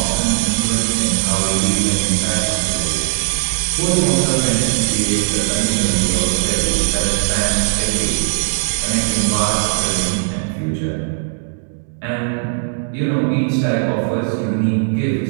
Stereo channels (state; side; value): silent; left; digital silence